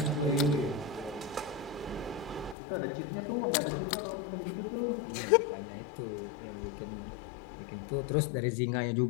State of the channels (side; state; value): right; drops out; at 2.6 s